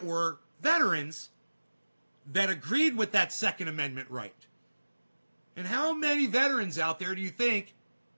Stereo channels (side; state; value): both; inverted; correlation -1.00